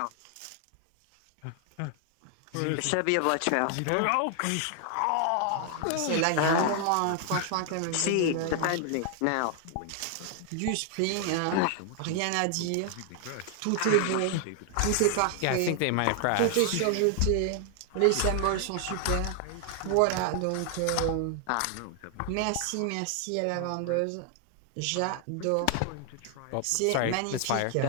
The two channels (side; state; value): both; different; correlation 0.00